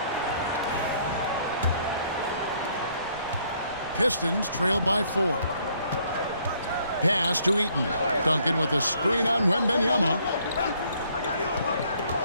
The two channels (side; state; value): both; inverted; correlation -0.66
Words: Pistons trail by 4. Pass to Eaton. Duncan with a screen on Wembanyama.